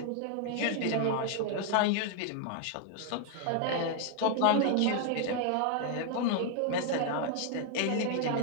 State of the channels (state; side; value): different; both; correlation 0.00